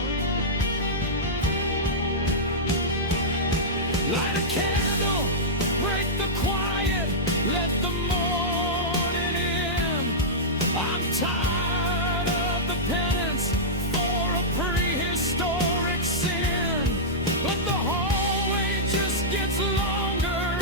Light a candle, break the quiet, let the morning in. I'm tired of the penance for a prehistoric sin, but the hallway just gets longer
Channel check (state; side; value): normal; both; correlation -0.12